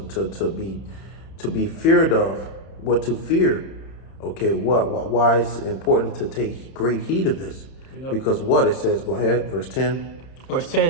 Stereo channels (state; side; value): late; right; 31 ms